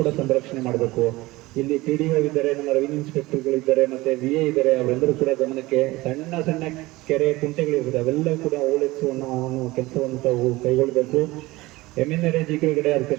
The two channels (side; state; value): left; quieter; 19.9 dB